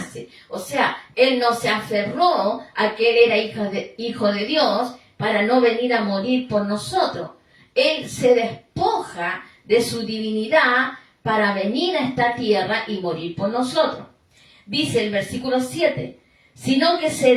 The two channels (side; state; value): both; identical; correlation 1.00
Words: O sea, Él no se aferró a que Él era hijo de Dios para no venir a morir por nosotros. Él se despoja de su divinidad para venir a esta tierra y morir por nosotros. Dice el versículo 7, sino que se